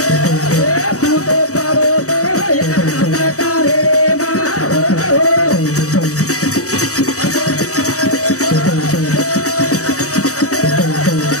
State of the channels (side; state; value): right; late; 0.65 ms